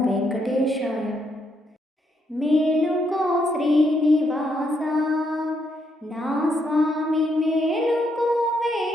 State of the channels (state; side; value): normal; both; correlation 0.76